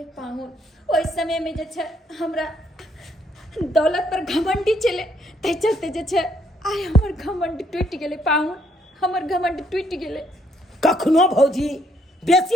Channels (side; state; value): both; normal; correlation 0.70